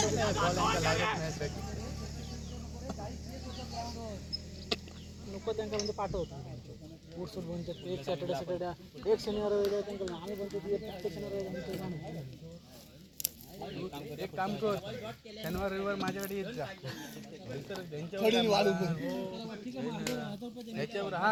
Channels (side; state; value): both; identical; correlation 1.00